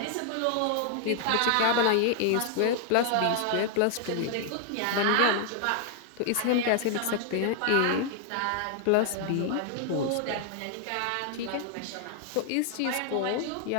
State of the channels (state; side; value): different; both; correlation 0.00